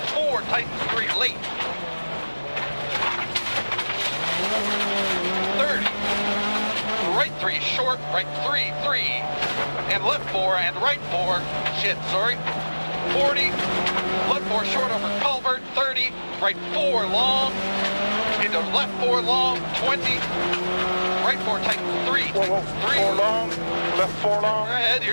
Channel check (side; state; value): both; inverted; correlation -1.00